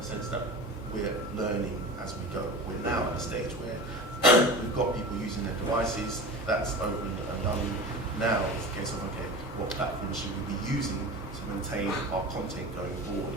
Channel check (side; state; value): both; normal; correlation 0.32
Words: sense that we're learning as we go. We're now at a stage where we've got people using their devices. That's opened and done. Now it's a case of, okay, what platform should we be using to maintain our content going forward?